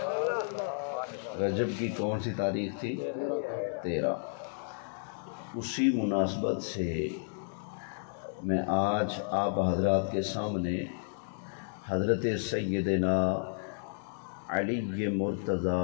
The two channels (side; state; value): right; silent; digital silence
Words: رجب کی کون سی تاریخ تھی؟ 13۔ اسی مناسبت سے میں آج آپ حضرات کے سامنے حضرت سیدنا علی